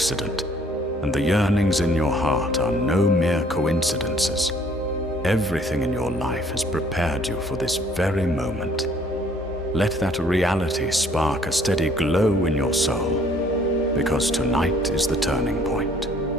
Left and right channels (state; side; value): normal; both; correlation 0.60